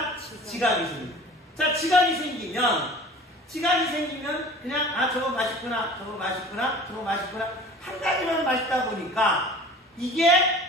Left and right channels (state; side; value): normal; both; correlation 0.43